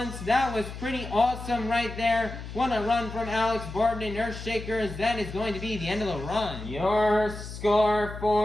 That was pretty awesome right there. What a run from Alex Borden in Earthshaker, as that is going to be the end of the run. Your score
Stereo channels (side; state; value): left; noise; hum, 10 dB below the sound